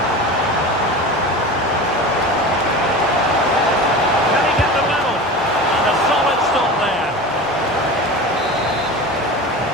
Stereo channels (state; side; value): normal; both; correlation 0.31